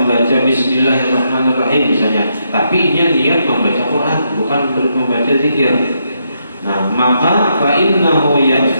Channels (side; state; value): both; inverted; correlation -0.79